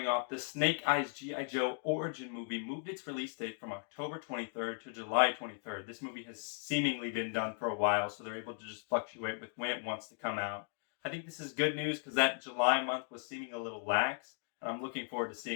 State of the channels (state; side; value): silent; right; 53 dB below the other